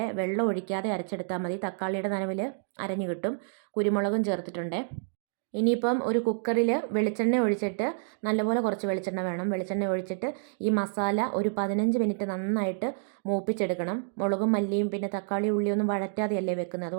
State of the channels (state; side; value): silent; left; digital silence